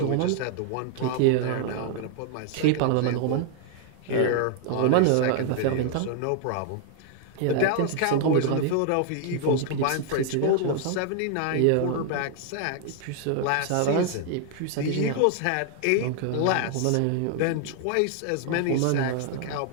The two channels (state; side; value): different; both; correlation 0.00